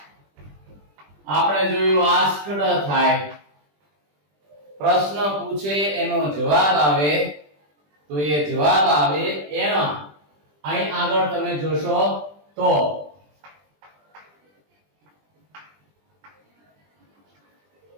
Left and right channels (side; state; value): left; late; 20 ms